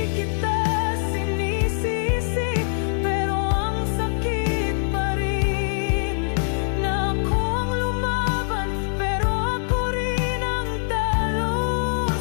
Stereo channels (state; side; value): silent; right; digital silence